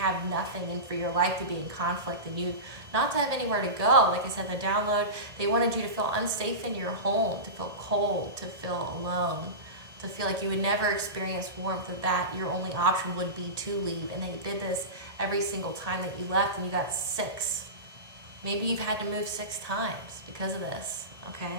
nothing and for your life to be in conflict and you not to have anywhere to go. Like I said, the download, they wanted you to feel unsafe in your home, to feel cold, to feel alone, to feel like you would never experience warmth, that your only option would be to leave. And they did this every single time that you left, and you got 6. Maybe you've had to move 6 times because of this,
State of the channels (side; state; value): left; late; 1.8 ms